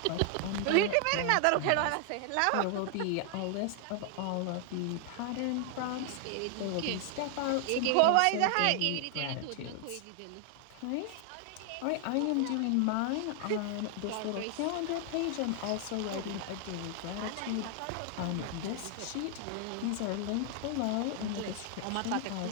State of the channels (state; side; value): different; both; correlation 0.00